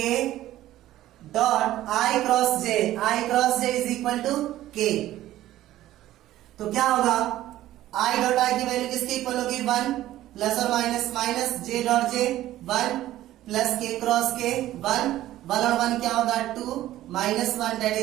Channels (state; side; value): quieter; left; 14.3 dB